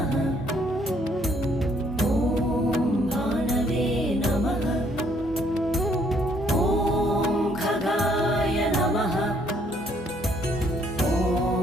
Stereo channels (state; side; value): normal; both; correlation 0.66